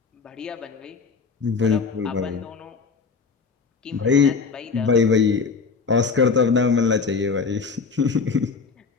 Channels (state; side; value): quieter; right; 4.9 dB